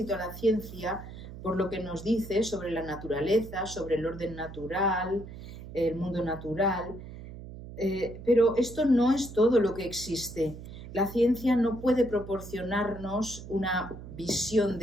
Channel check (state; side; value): noise; right; hum, 13 dB below the sound